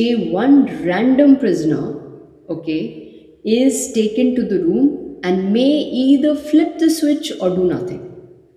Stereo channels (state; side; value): identical; both; correlation 1.00